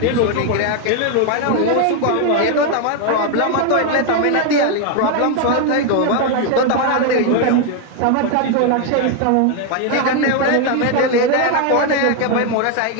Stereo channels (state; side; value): different; both; correlation 0.01